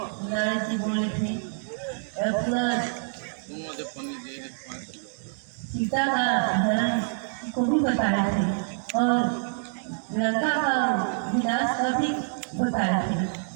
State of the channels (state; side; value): silent; left; digital silence